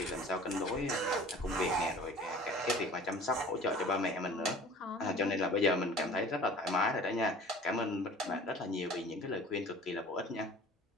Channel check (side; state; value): both; normal; correlation 0.45